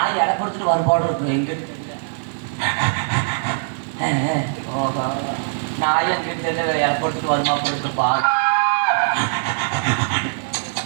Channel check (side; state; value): left; silent; 65 dB below the other